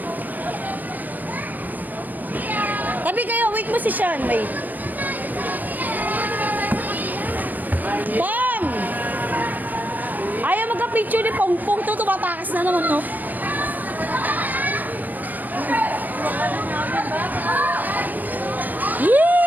Tabi kayo, wait mo si Sean, wait. Pong! Ayaw magka-picture ni Pong-Pong to, tumatakas na naman, no? Yee!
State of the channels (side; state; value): left; late; 0.083 ms